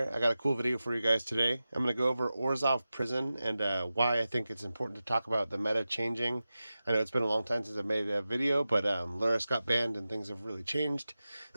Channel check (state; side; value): inverted; both; correlation -0.94